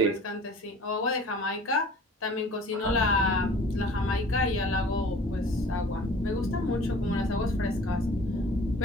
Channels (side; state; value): both; normal; correlation 0.47